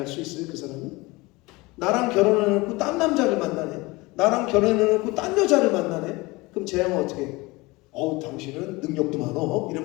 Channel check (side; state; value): right; quieter; 22.9 dB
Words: 수 있어요? 그 사람이? 나랑 결혼해놓고 딴 남자를 만나네. 나랑 결혼해놓고 딴 여자를 만나네. 그럼 제 형은 어떻게 해? 당신은 능력도 많어.